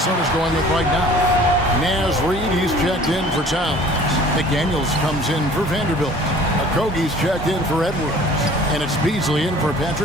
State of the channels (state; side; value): normal; both; correlation 0.49